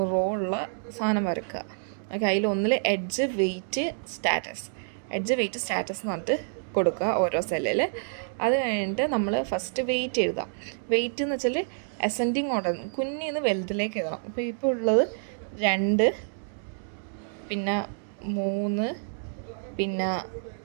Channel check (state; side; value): silent; left; digital silence